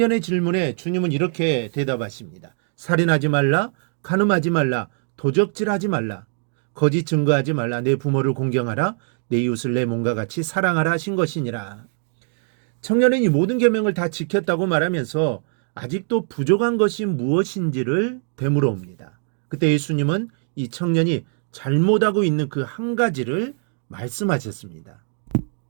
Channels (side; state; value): left; silent; 58 dB below the other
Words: 질문에 주님은 이렇게 대답하십니다. 살인하지 말라, 간음하지 말라, 도적질하지 말라, 거짓 증거하지 말라, 내 부모를 공경하라, 내 이웃을 내 몸과 같이 사랑하라 하신 것이니라. 청년은 이 모든 계명을 다 지켰다고 말하면서 아직도 부족한 것이 무엇인지를 되물어 옵니다. 그때 예수님은 이 청년이 잘못하고 있는 그 한 가지를 말씀하셨습니다.